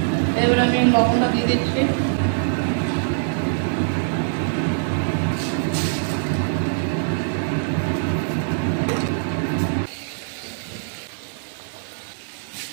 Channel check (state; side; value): silent; left; digital silence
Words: এবার আমি লবণটা দিয়ে দিচ্ছি।